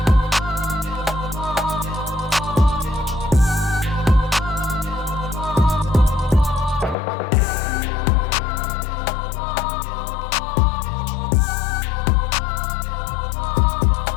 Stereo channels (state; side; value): drops out; right; at 7.0 s